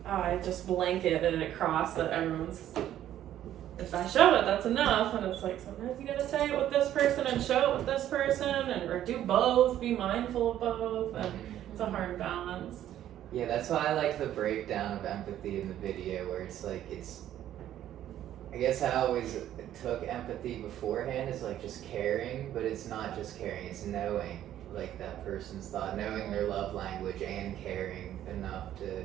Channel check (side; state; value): left; quieter; 11.9 dB